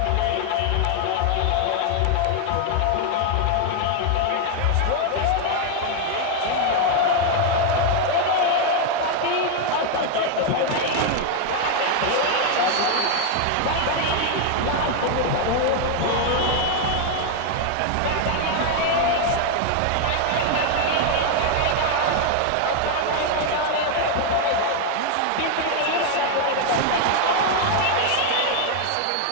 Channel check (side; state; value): both; different; correlation 0.00